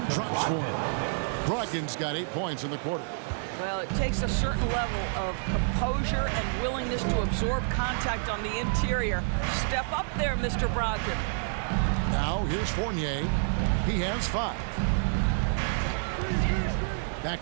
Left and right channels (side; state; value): left; silent; digital silence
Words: drops for him. Brogdon's got 8 points in the quarter. Well, it takes a certain level of composure and willingness to absorb contact on the interior. Step up there, Mr. Brogdon. Now, here's Fournier. He has 5.